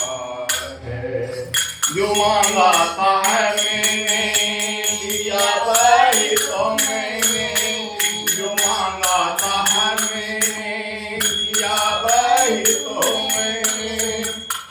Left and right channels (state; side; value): identical; both; correlation 1.00